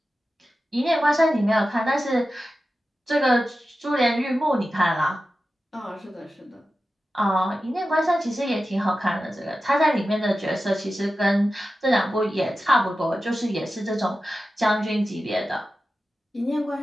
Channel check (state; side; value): normal; both; correlation 0.93